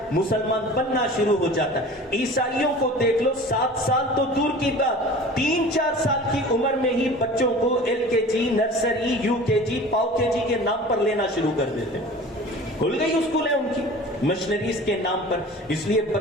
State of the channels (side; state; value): both; normal; correlation 0.41